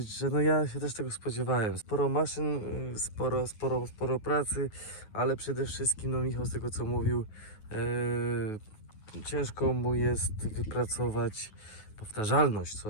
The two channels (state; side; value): late; right; 9.4 ms